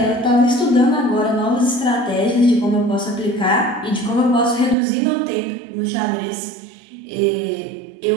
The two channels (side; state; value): left; drops out; at 4.8 s